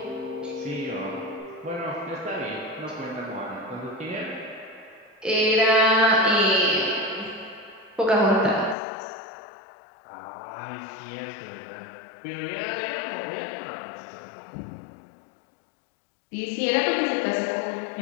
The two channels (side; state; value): right; drops out; at 8.8 s